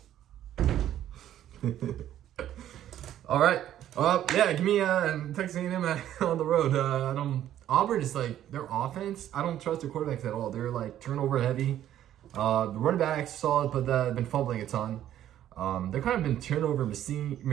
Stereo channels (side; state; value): left; quieter; 11.7 dB